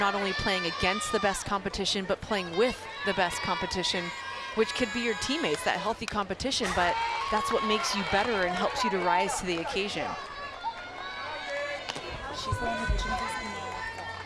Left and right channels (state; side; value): identical; both; correlation 1.00